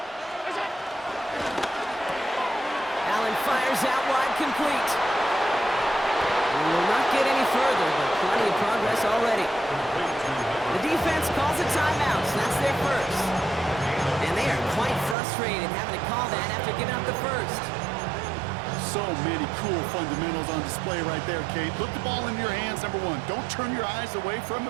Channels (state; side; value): drops out; left; at 15.2 s